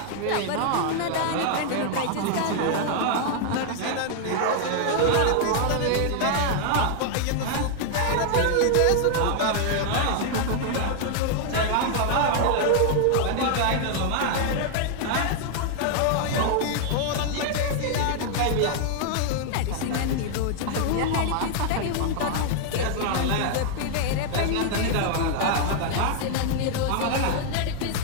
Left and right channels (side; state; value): both; different; correlation 0.00